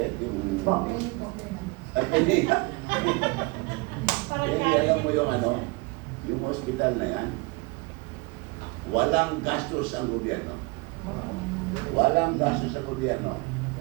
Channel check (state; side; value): quieter; left; 26.1 dB